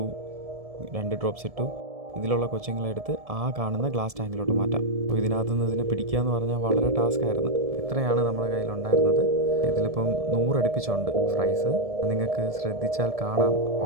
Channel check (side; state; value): left; late; 1.7 ms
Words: 2 ഡ്രോപ്സ് ഇട്ടു. ഇതിലുള്ള കൊച്ചുങ്ങളെടുത്ത് ആ കാണുന്ന ഗ്ലാസ് ടാങ്കിലോട്ട് മാറ്റാം. അപ്പോൾ ഇതിനകത്തുനിന്ന് ഇതിനെ പിടിക്കുക എന്ന് പറഞ്ഞാൽ വളരെ ടാസ്ക്കായിരുന്നു. ഇത്രയാണ് നമ്മുടെ കയ്യിലുണ്ടായിരുന്നത്. ഇതിലിപ്പം 100 അടുപ്പിച്ചുണ്ട് ഫ്രൈസ്. നിങ്ങൾക്ക് ശ്രദ്ധിച്ചാൽ കാണാം,